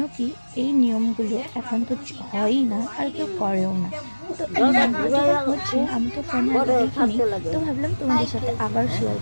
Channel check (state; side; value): inverted; both; correlation -1.00